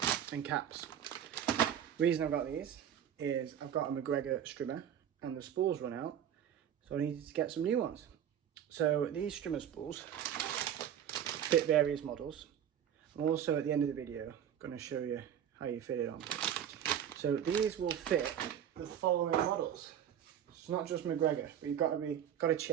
and caps. The reason I've got these is I've got a McGregor strimmer and the spools run out, so I needed to get some new ones. So these strimmer spools fit various models. I'm also at the end of the video going to show you how you fit it on. So these will fit the following models. It's not just McGregor, but you've got to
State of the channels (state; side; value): quieter; left; 9.6 dB